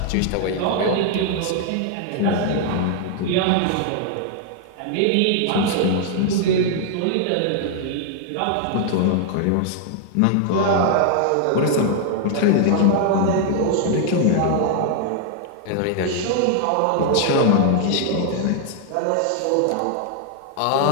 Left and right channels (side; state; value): both; different; correlation 0.00